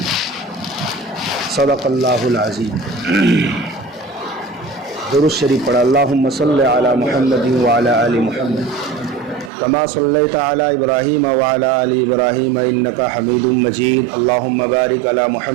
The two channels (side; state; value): left; drops out; at 9.5 s